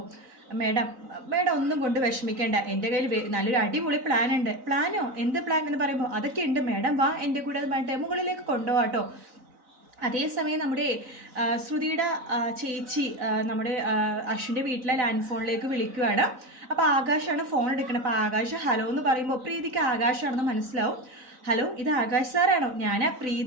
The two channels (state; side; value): late; left; 3.9 ms